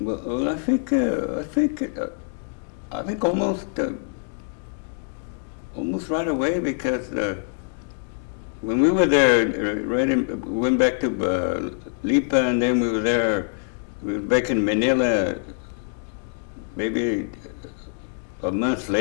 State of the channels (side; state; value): right; silent; digital silence